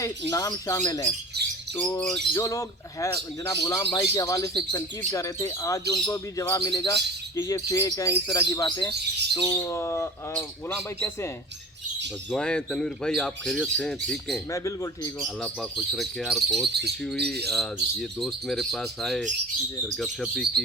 नाम शामिल हैं। तो जो लोग है जनाब गुलाम भाई के हवाले से तनकीद कर रहे थे, आज उनको भी जवाब मिलेगा कि ये फेक हैं, इस तरह की बातें। तो गुलाम भाई कैसे हैं? बस दुआएं तनवीर भाई, आप खैरियत से हैं? ठीक हैं? मैं बिल्कुल ठीक हूँ। अल्लाह पाक खुश रखे यार। बहुत खुशी हुई, ये दोस्त मेरे पास आए, फिर गपशप भी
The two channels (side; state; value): both; normal; correlation 0.39